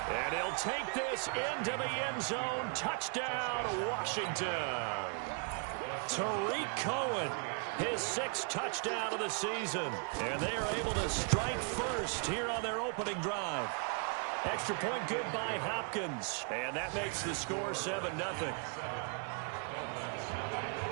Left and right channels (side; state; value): left; quieter; 39.9 dB